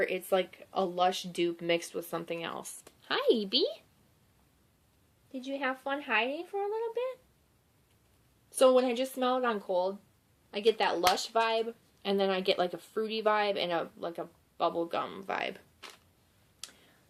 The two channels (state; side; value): identical; both; correlation 1.00